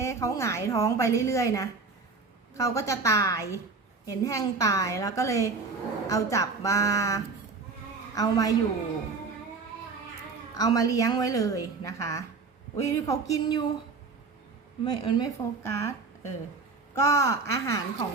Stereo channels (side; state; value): left; quieter; 4.4 dB